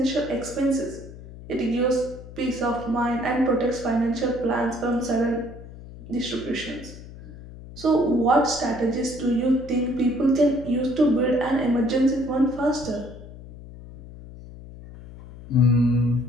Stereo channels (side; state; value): left; noise; hum, 16 dB below the sound